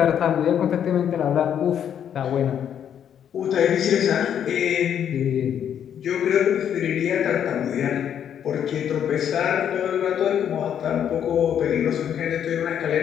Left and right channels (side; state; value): right; quieter; 9.1 dB